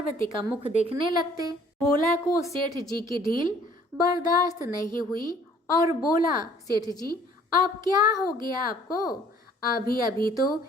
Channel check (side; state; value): both; normal; correlation 0.57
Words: का मुख देखने लगते। भोला को सेठ जी की ढील बर्दाश्त नहीं हुई और बोला, सेठ जी अब क्या हो गया आपको? अभी अभी तो